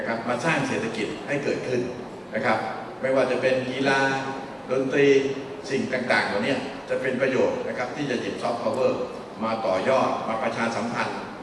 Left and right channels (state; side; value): identical; both; correlation 1.00